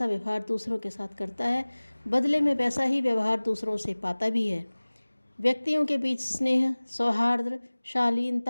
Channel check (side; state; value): both; inverted; correlation -1.00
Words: व्यवहार दूसरों के साथ करता है, बदले में वैसा ही व्यवहार दूसरों से पाता भी है। व्यक्तियों के बीच स्नेह, सौहार्द,